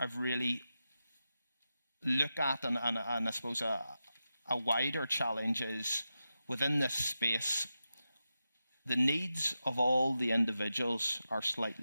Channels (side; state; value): both; inverted; correlation -0.90